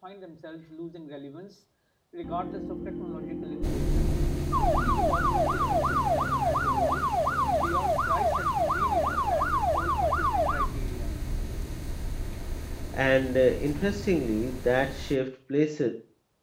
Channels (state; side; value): identical; both; correlation 1.00